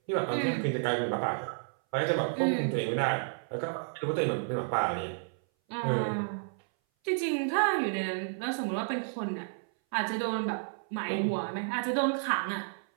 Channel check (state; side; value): silent; left; 57 dB below the other